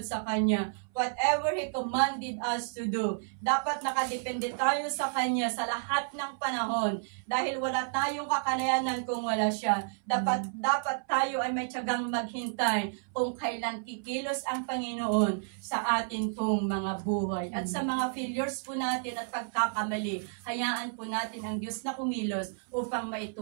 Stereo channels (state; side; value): silent; left; 57 dB below the other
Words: Kanya. Whatever He commanded us to do, dapat nakadepende tayo sa Kanya sa lahat ng panahon. Dahil wala tayong kakanayanan kung wala siya. Dapat tayo ay may tiyagang maghintay kung kailan kikilos ang Panginoon sa atin pong mga buhay. At sa mga failures po natin at pagkakamali, hayaan po natin ang Diyos na kumilos upang